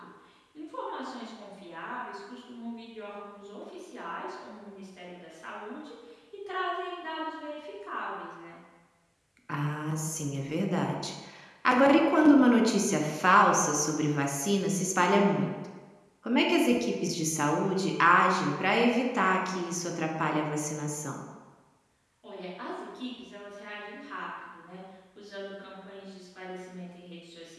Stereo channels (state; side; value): identical; both; correlation 1.00